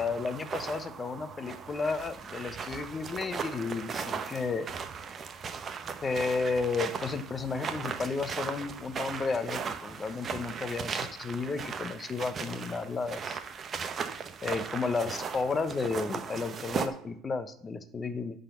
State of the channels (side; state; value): both; normal; correlation 0.75